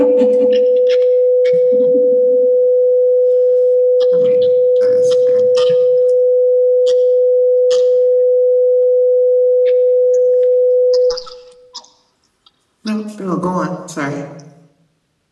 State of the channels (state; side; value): identical; both; correlation 1.00